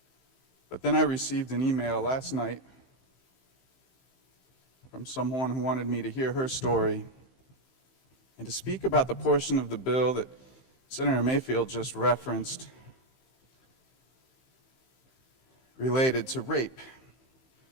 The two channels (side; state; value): right; late; 15 ms